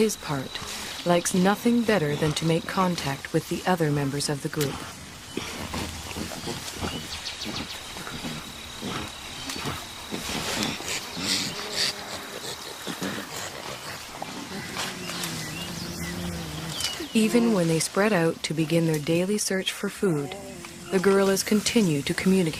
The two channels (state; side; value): identical; both; correlation 1.00